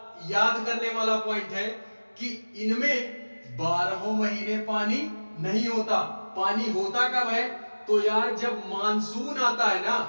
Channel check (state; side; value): inverted; both; correlation -1.00